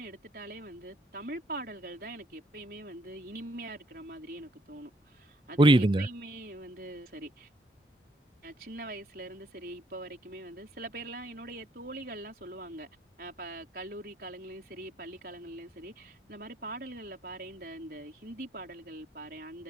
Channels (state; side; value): normal; both; correlation 0.68